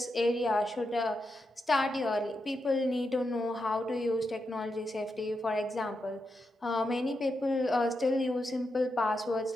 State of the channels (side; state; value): both; normal; correlation 0.85